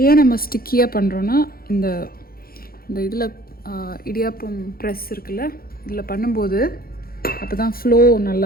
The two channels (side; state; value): right; late; 0.43 ms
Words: ஏன் நம்ம ஸ்டிக்கியாக பண்ணுறோன்னா, இந்த இதில் இடியாப்பம் ப்ரெஸ் இருக்குல்ல, இதில் பண்ணும்போது அப்போ தான் ஃப்ளோ